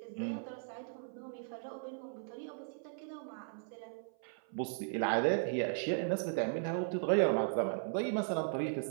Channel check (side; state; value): left; silent; 53 dB below the other